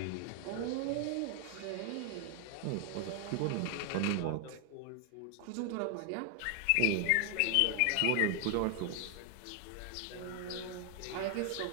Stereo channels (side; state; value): both; different; correlation 0.00